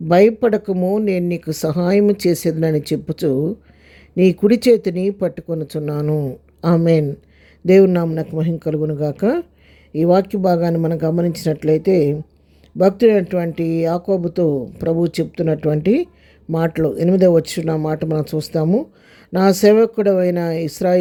భయపడకము, నేను నీకు సహాయము చేసేదనని చెప్పుచు నీ కుడి చేతిని పట్టుకొనుచున్నాను. ఆమెన్. దేవుని నామమునకు మహిమ కలుగునుగాక. ఈ వాక్య భాగాన్ని మనం గమనించినట్లయితే భక్తుడైనటువంటి యాకోబుతో ప్రభు చెప్తున్నటువంటి మాటలు 8వ వచనం మాట మనం చూస్తాము. నా సేవకుడైన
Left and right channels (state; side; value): identical; both; correlation 1.00